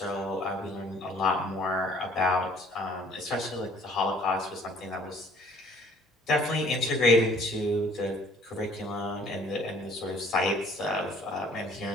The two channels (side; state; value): both; normal; correlation 0.57